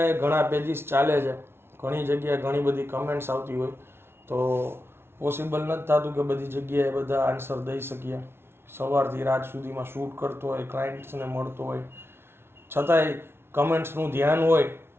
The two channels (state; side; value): late; left; 0.12 ms